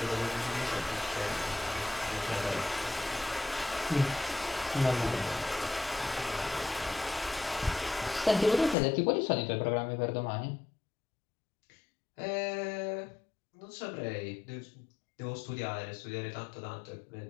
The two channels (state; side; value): drops out; right; at 8.8 s